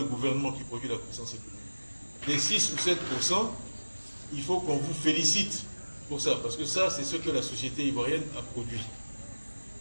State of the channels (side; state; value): both; inverted; correlation -1.00